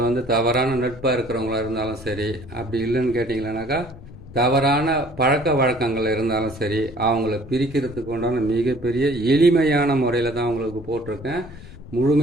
வந்து தவறான நட்பாக இருக்கிறவங்களா இருந்தாலும் சரி, அப்படி இல்லைன்னு கேட்டிங்களானாக்கா தவறான பழக்க வழக்கங்கள் இருந்தாலும் சரி, அவங்கள பிரிக்கிறதுக்கு உண்டான மிகப்பெரிய எளிமையான முறையில் தான் உங்களுக்கு போட்டிருக்கேன்.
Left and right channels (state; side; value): noise; left; rumble, 18 dB below the sound